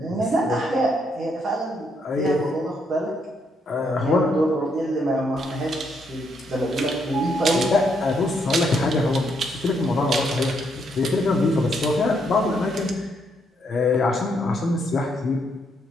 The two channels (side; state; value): both; normal; correlation 0.75